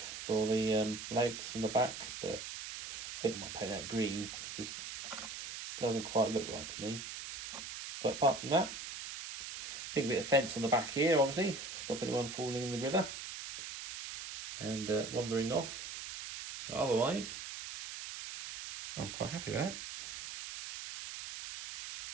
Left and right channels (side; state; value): right; noise; hiss, 8 dB below the sound